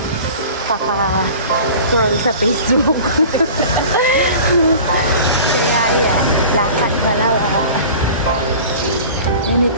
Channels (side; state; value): both; inverted; correlation -0.40